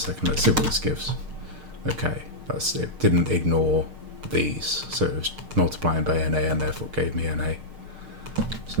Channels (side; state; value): left; late; 6.5 ms